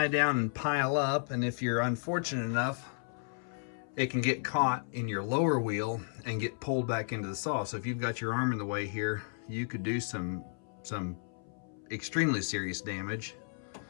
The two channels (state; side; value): silent; right; 56 dB below the other